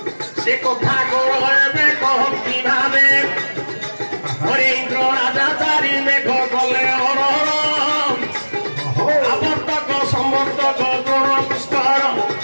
ସେ କଥା କର ଏବେ କହନ୍ତି ଭାବେ ହରେ ଇନ୍ଦ୍ର ରାଜା ଚାରି ମେଘ କଲେ ହରହର ওহো ଆବର୍ତ୍ତକ ସମର୍ତ୍ତକ ଦ୍ରୋଣ ପୁଷ୍କର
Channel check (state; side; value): inverted; both; correlation -1.00